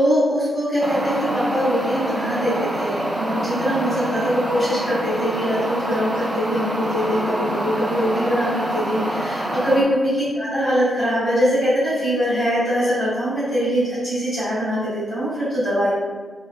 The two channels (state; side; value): normal; both; correlation 0.79